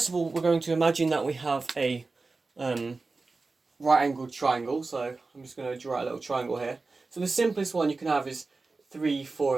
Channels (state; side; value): quieter; left; 3.8 dB